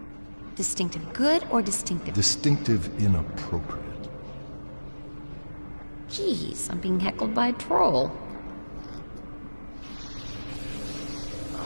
Distinctive good or distinctive? Distinctive inappropriate. Jeez, I'm being heckled by a troll.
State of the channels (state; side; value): inverted; both; correlation -1.00